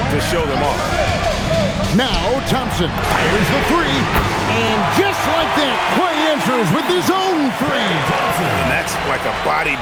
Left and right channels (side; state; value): both; identical; correlation 1.00